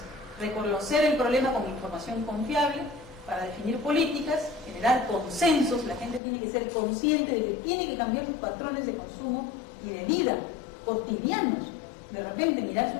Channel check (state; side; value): drops out; right; at 6.2 s